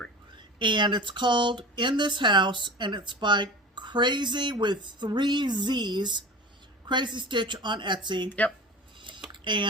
And it's called In This House, and it's by Crazy with 3 Z's, Crazy Stitch on Etsy. Yep.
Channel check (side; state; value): both; normal; correlation 0.35